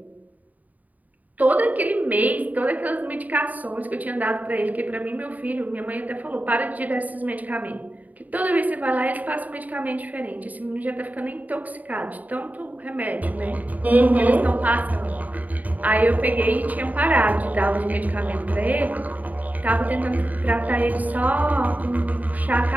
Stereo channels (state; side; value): late; left; 0.076 ms